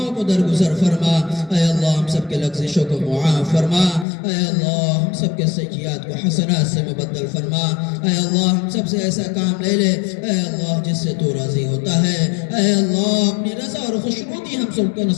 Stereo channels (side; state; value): right; drops out; at 4.0 s